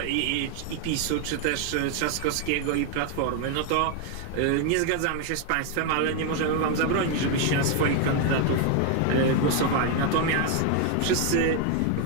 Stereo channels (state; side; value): different; both; correlation 0.01